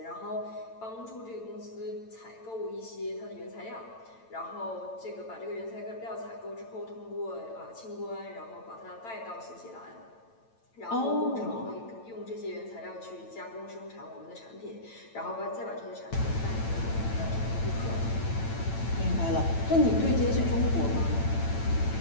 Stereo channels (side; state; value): right; late; 8.9 ms